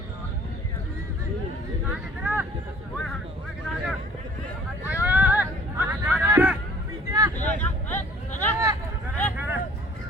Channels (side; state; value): both; normal; correlation 0.53